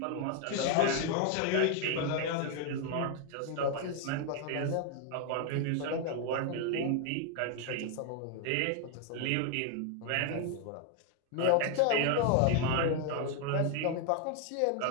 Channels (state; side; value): different; both; correlation 0.01